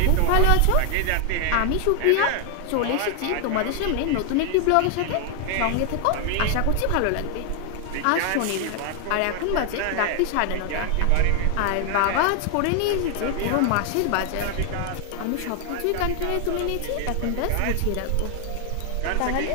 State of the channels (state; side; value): different; both; correlation 0.00